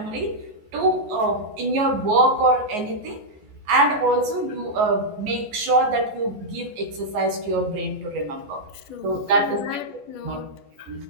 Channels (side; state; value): left; late; 14 ms